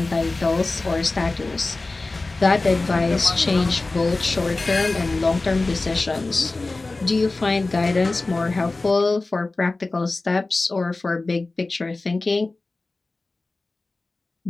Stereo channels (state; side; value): quieter; right; 3.3 dB